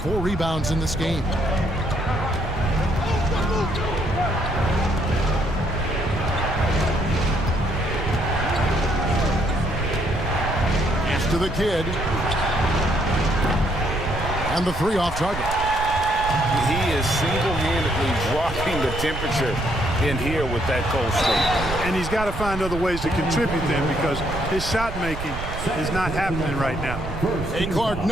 4 rebounds in this game. Pass to the kid. And the 3 off target. He is single-handedly dropping the temperature in here with that cold streak. And he's got to find other ways to contribute then, because his shot making is not happening right now. Hey, Clark,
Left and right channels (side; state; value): right; noise; rumble, 7 dB below the sound